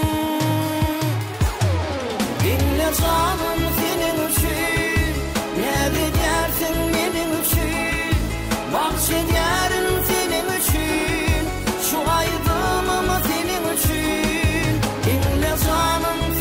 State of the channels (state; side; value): identical; both; correlation 1.00